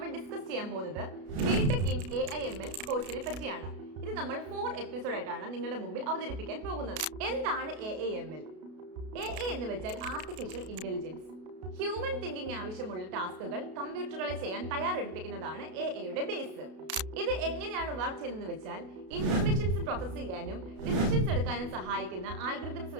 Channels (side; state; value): left; late; 33 ms